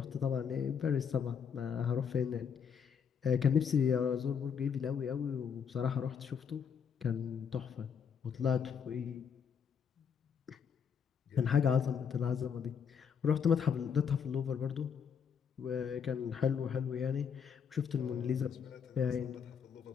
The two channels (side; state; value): right; quieter; 7.1 dB